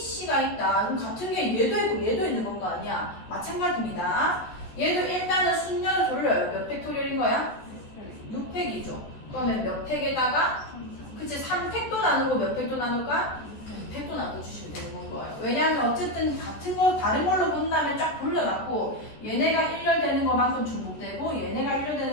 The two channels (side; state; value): right; late; 14 ms